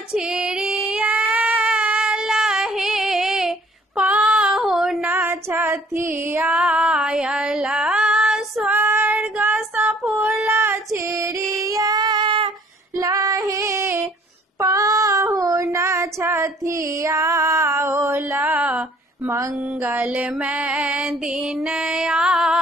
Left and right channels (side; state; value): both; normal; correlation 0.57